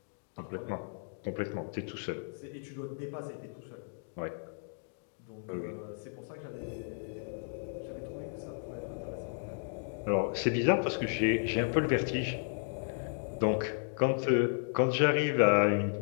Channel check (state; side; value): silent; right; digital silence